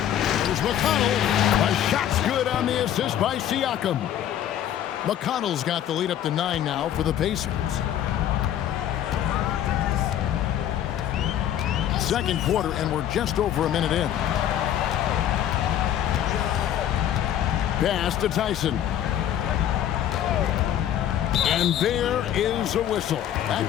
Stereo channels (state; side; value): quieter; right; 10.8 dB